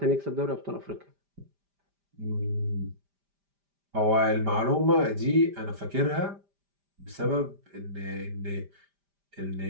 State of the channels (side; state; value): left; late; 5.0 ms